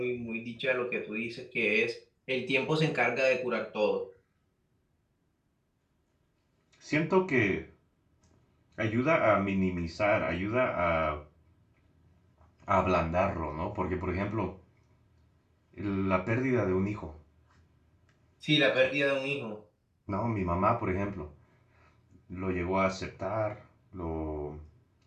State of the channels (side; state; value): both; identical; correlation 1.00